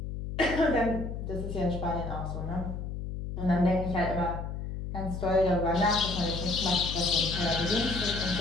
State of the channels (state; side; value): noise; left; hum, 6 dB below the sound